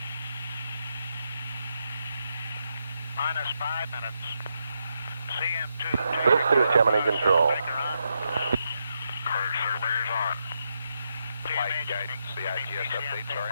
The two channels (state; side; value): inverted; both; correlation -0.82